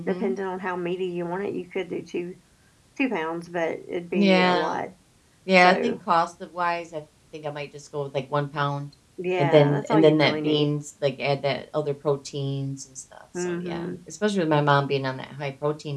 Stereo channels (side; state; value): both; identical; correlation 1.00